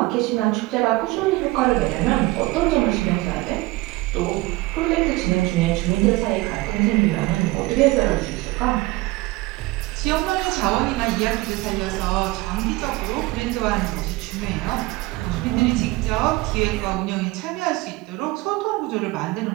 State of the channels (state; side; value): quieter; left; 20.9 dB